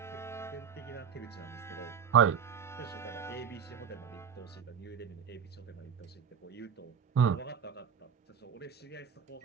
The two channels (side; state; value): left; quieter; 7.4 dB